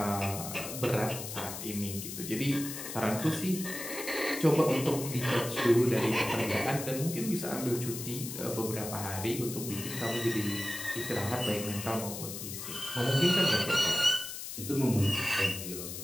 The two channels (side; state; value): left; noise; hiss, 8 dB below the sound